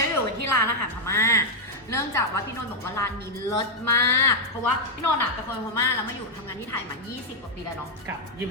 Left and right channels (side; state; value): both; normal; correlation 0.00